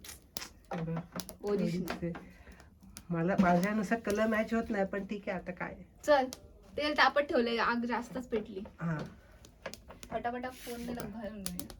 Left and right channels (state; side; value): identical; both; correlation 1.00